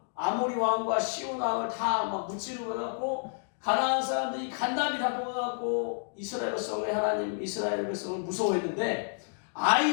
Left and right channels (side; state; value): right; silent; digital silence